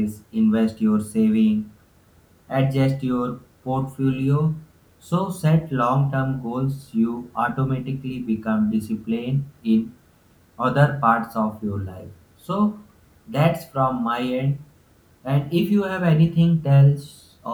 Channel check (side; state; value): both; identical; correlation 1.00